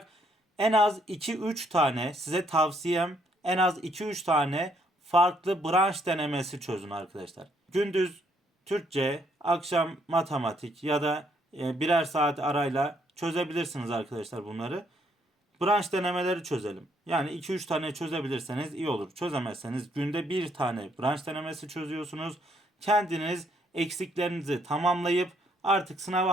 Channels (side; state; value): both; normal; correlation 0.70